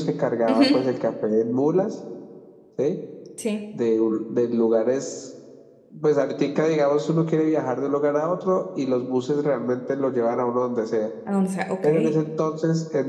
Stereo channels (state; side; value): identical; both; correlation 1.00